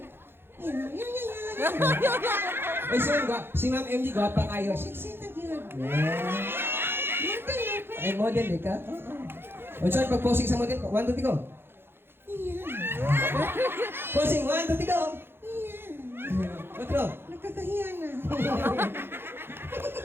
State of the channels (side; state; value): left; late; 0.11 ms